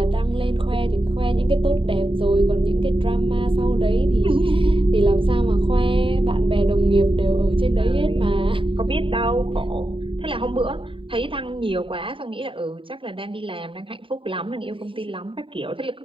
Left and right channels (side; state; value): left; late; 0.25 ms